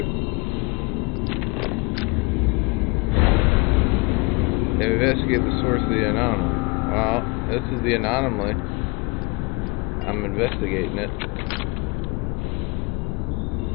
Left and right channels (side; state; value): right; quieter; 27.1 dB